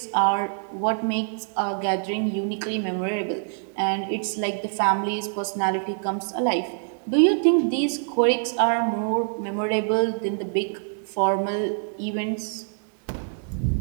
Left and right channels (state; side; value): silent; left; digital silence